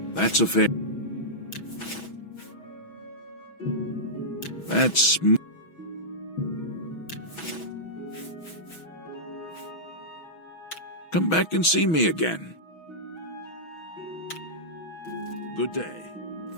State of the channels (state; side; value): late; right; 6.2 ms